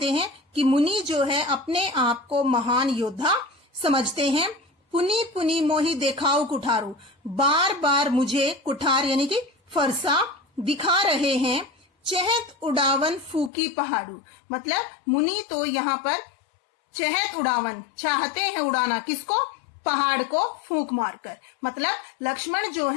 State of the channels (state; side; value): drops out; right; at 13.5 s